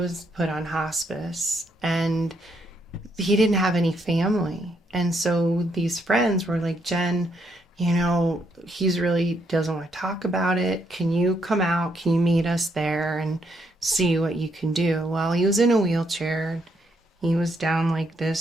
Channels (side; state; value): both; normal; correlation 0.75